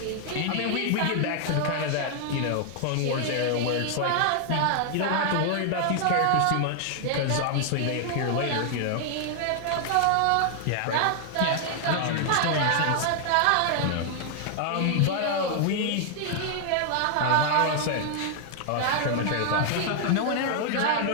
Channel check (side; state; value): both; different; correlation 0.00